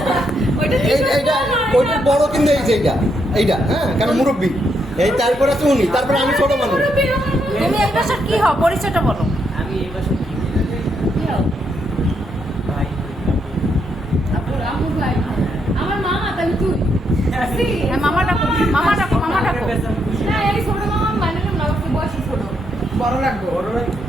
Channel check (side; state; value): both; normal; correlation 0.78